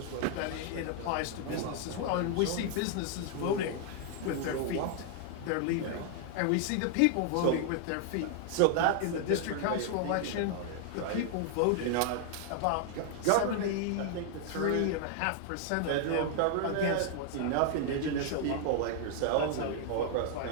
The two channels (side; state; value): both; different; correlation 0.00